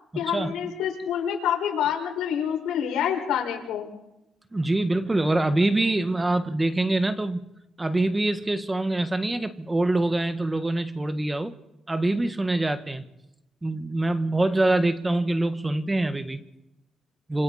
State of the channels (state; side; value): normal; both; correlation 0.89